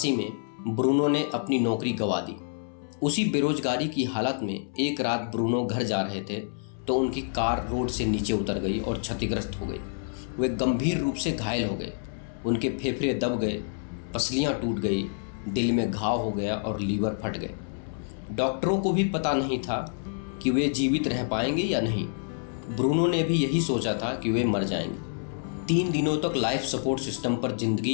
में ब्रूनो ने अपनी नौकरी गंवा दी। उसी बेरोजगारी की हालत में एक रात ब्रूनो घर जा रहे थे तो उनकी कार रोड से नीचे उतर गई और क्षतिग्रस्त हो गई। वे गंभीर रूप से घायल हो गए। उनके फेफड़े दब गए, पसलियां टूट गई, दिल में घाव हो गया और लीवर फट गए। डॉक्टरों को भी पता नहीं था कि वे जीवित रह पाएंगे या नहीं। ब्रूनो ने भी यही सोचा था कि वे मर जाएंगे। 3 दिनों तक लाइफ सपोर्ट सिस्टम पर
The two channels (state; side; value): silent; right; 60 dB below the other